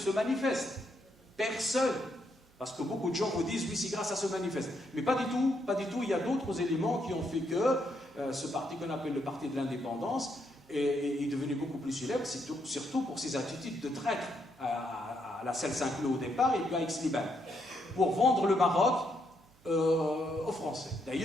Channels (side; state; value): right; noise; hum, 30 dB below the sound